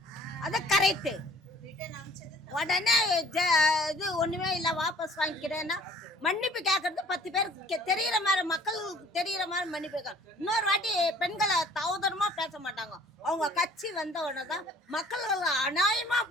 அது கரெக்டு. உடனே இது ஒன்றுமே இல்லை வாபஸ் வாங்கிக்கிறேன்னா மன்னிப்பு கேட்கறது 10 பேர் தெரிகிற மாதிரி, மக்களுக்கு தெரிகிற மாதிரி மன்னிப்பு கேட்கணும். இன்னொரு வாட்டி பெண்களை தவதரமாக பேச மாட்டாங்க. அவங்க கட்சி வந்த உடனே தான் மக்களுக்கு அநியாயமாக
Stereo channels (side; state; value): both; normal; correlation 0.53